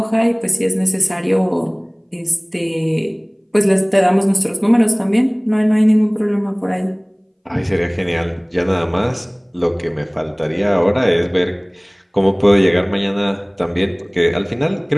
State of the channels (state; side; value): identical; both; correlation 1.00